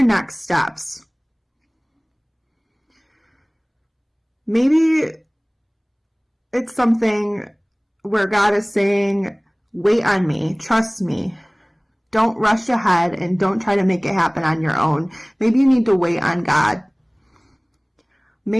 next steps? Maybe it's something where God is saying, wait on me, trust me. Don't rush ahead and don't try to make it happen on your own. Maybe you need to wait on God.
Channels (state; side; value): identical; both; correlation 1.00